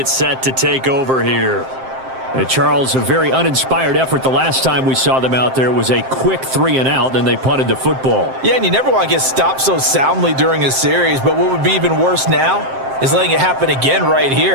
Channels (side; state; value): left; late; 7.6 ms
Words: set to take over here. And Charles, a very uninspired effort the last time we saw them out there. Was a quick 3 and out, then they punted the football. Yeah, and you never want to get stopped so soundly during a series, but what would be even worse now is letting it happen again right